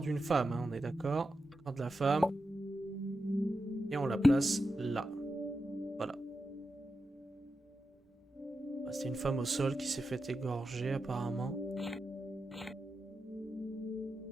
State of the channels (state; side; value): normal; both; correlation 0.89